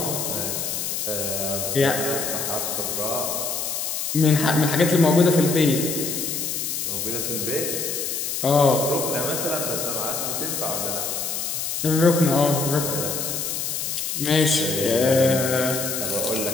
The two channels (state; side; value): noise; left; hiss, 2 dB below the sound